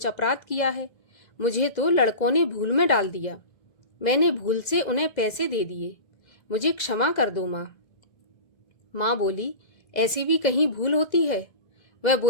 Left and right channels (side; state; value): right; late; 2.0 ms